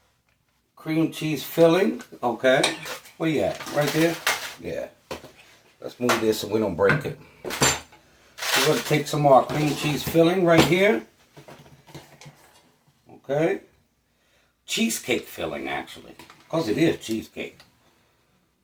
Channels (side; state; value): both; identical; correlation 1.00